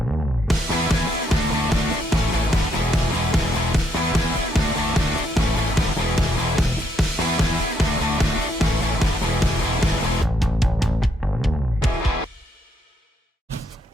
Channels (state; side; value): normal; both; correlation 0.75